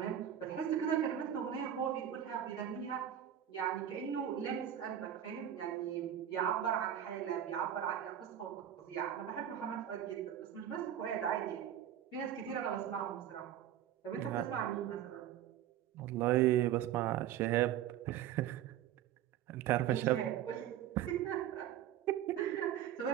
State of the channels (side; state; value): left; quieter; 10.7 dB